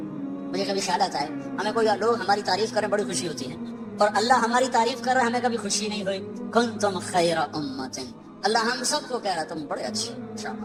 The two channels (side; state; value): both; identical; correlation 1.00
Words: مجھے کبھی خیال آتا ہے ہمیں کوئی لوگ ہماری تعریف کریں بڑی خوشی ہوتی ہے, اور اللہ ہماری تعریف کر رہا ہے ہمیں کبھی خوشی نہیں ہوئی. کنتم خیر امت, اللہ ہم سب کو کہہ رہا تم بڑے اچھے